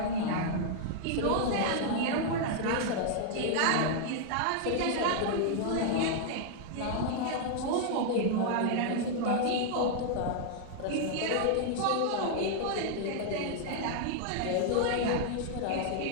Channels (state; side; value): different; both; correlation -0.01